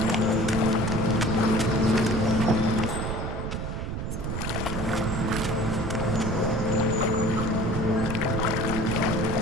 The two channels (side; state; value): right; noise; rumble, 4 dB below the sound